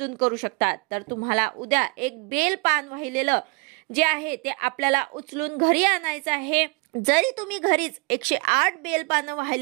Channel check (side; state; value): left; quieter; 30.3 dB